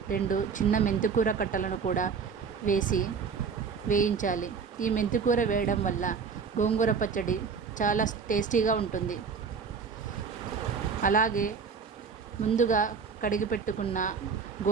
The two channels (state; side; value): quieter; left; 5.7 dB